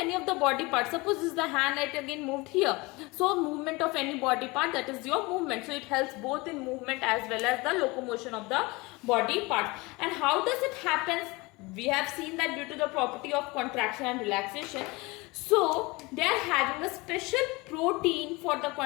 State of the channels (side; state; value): right; quieter; 24.3 dB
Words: of the body parts. Suppose this is the hand, it again moved here. So movement of any body part, that is your movement. So it helps both in movement as well as the locomotion of the body parts. And how does it happen? We have seen that due to the property of contraction and relaxation. So they are having a special protein for the